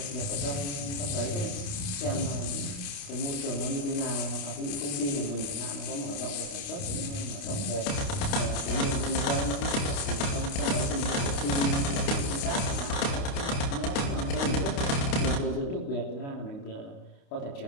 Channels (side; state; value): right; late; 29 ms